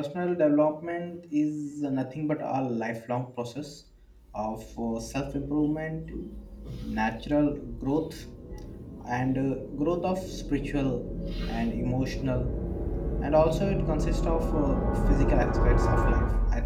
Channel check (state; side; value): identical; both; correlation 1.00